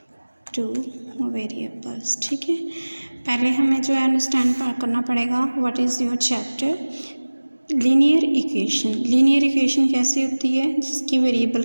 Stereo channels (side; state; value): both; inverted; correlation -1.00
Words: two variables. ठीक है, पहले हमें जो है understand करना पड़ेगा what is your chapter linear equation. Linear equation कैसी होती है जिसकी वेरिएबल